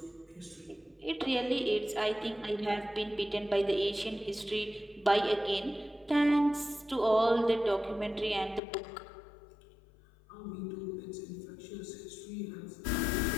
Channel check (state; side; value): drops out; right; at 8.6 s